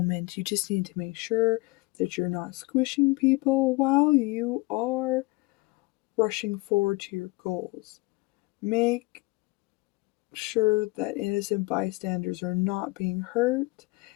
You just need to make sure that you're not squishing people while you are rushing forward to your goals. Make sure that innocent bystanders are not being hurt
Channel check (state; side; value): quieter; right; 23.8 dB